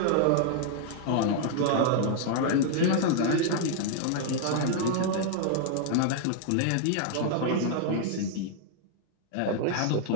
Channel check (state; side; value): different; both; correlation 0.00